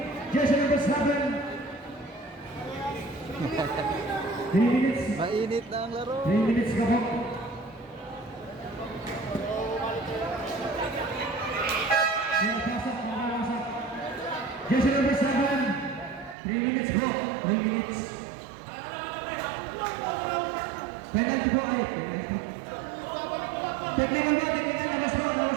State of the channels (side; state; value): left; drops out; at 16.4 s